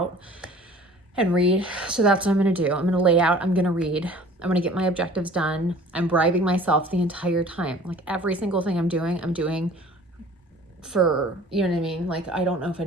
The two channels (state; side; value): normal; both; correlation 0.48